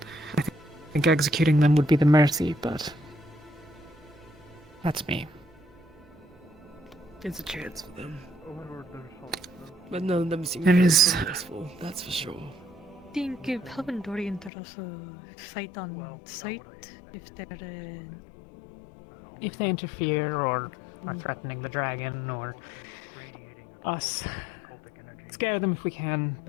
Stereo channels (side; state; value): right; drops out; at 14.5 s